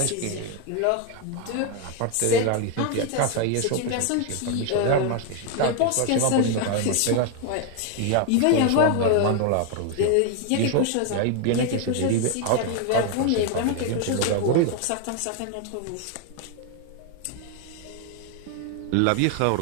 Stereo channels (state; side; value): different; both; correlation 0.01